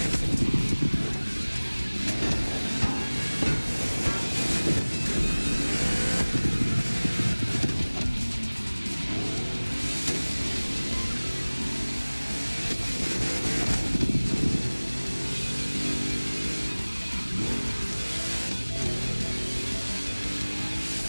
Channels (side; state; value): both; inverted; correlation -1.00